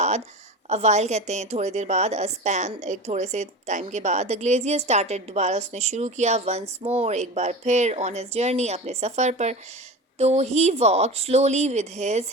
अवाइल कहते हैं थोड़ी देर बाद, अ स्पैन एक थोड़े से टाइम के बाद, द ग्लेजियर स्टार्टेड, दोबारा उसने शुरू किया, वंस मोर एक बार फिर, ऑन हिज जर्नी अपने सफ़र पर। तो he walk slowly with his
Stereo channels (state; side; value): normal; both; correlation 0.30